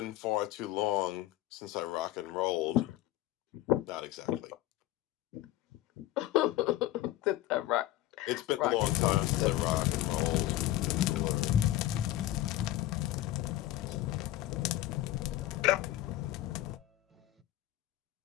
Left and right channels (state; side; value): quieter; right; 14.8 dB